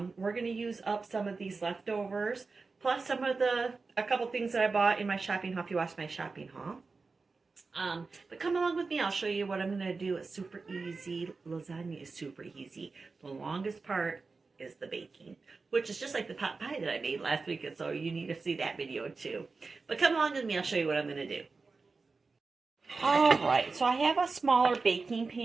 we're going to use up some of these leftovers. Plus some of a couple things that I bought in my shopping haul if you watched my shopping haul. But come along with me. I'll show you what I'm going to do. It's super easy. Lasagna is super easy. The longest part is the baking, which is just like the pot pie that I made last week. And so you need to see that video too. But come along with me. I'll show you what I'm going to do. All right. So I have a smaller baking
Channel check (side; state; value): left; quieter; 4.2 dB